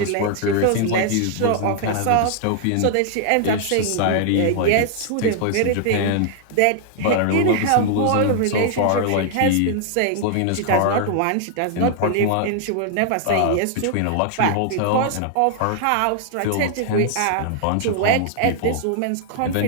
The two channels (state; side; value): different; both; correlation 0.00